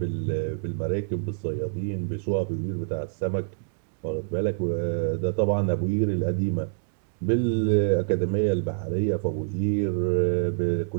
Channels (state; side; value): silent; left; digital silence